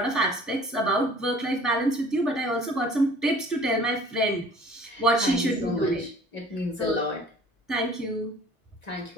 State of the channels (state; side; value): normal; both; correlation 0.50